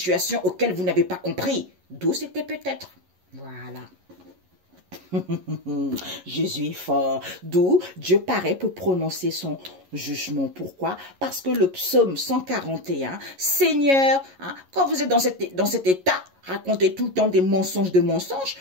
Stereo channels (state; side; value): late; left; 11 ms